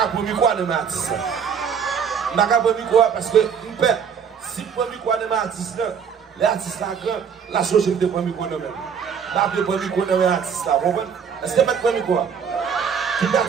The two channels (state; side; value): quieter; left; 7.0 dB